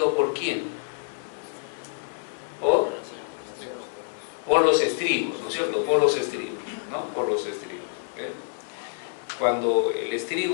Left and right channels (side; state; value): right; silent; digital silence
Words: ¿por quién? Por los estribos, ¿no es cierto? Por los estribos, ¿no? Por los estribos, ¿eh? Cuando el